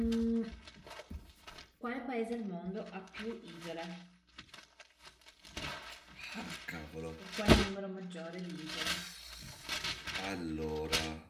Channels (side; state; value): both; identical; correlation 1.00